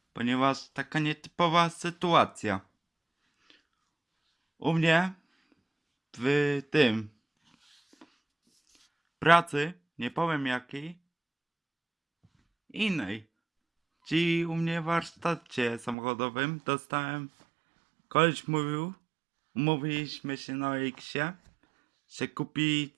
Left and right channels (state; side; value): drops out; left; at 16.0 s